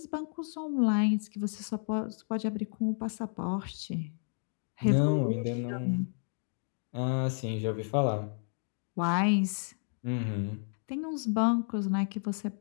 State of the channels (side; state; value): right; silent; 57 dB below the other